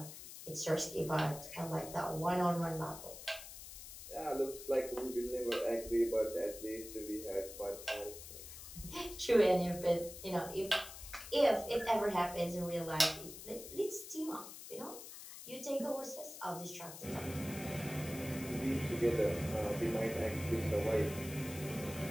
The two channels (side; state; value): left; noise; hiss, 12 dB below the sound